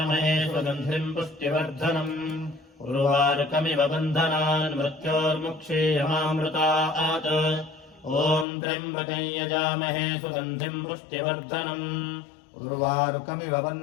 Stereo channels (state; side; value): drops out; right; at 8.5 s